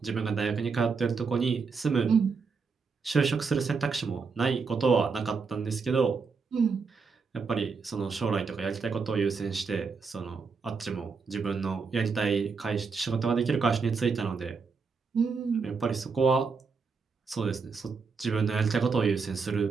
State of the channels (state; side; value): quieter; left; 5.0 dB